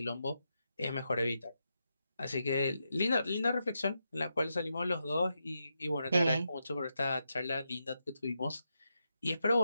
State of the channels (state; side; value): inverted; both; correlation -0.85